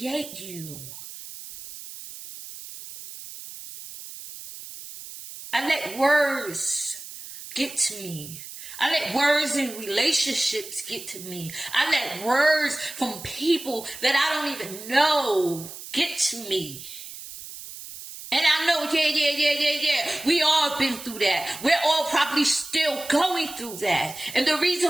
you. I let words get to me. I let words in relationships get to me. I let words from people that I don't even know get to me. And I know, yeah. We all been through that. We're all probably still going through that. And the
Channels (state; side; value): noise; right; hiss, 13 dB below the sound